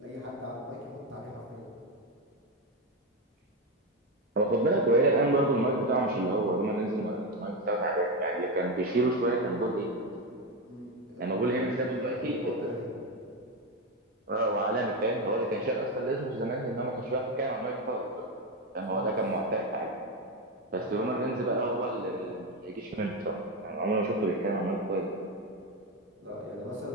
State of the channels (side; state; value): both; normal; correlation 0.12